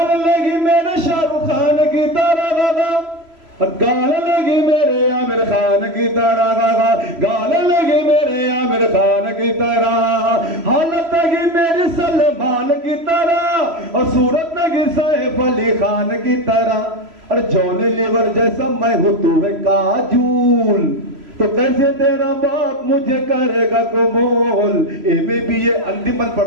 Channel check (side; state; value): left; late; 3.0 ms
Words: लगी मेरे शाहरुख खान की तरह गा, गाल लगी मेरे आमिर खान की तरह गा, गाल लगी मेरे आमिर खान की तरह, हालत लगी मेरी सलमान की तरह, और सूरत लगी सैफ अली खान की तरह। और जॉनी लीवर जैसा मैं हूँ तू है काजूल, तो कैसे तेरा बाप मुझे करेगा कबूल। एमे भी ये अंतिम बंद